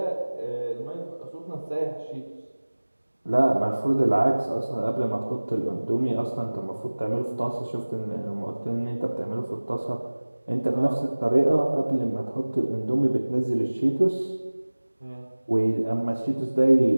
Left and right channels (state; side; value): inverted; both; correlation -1.00